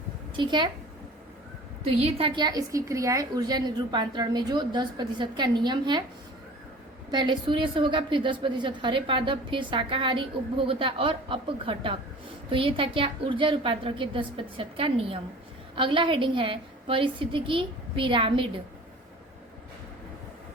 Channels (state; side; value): normal; both; correlation 0.43